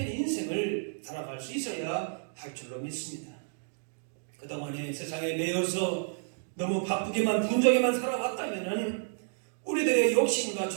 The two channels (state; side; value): silent; left; digital silence